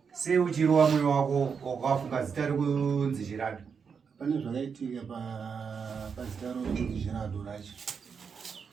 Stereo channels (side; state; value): left; quieter; 6.2 dB